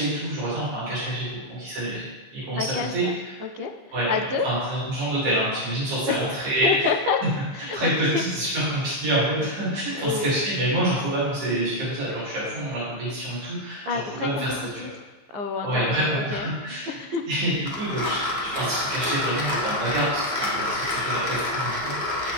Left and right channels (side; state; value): left; late; 15 ms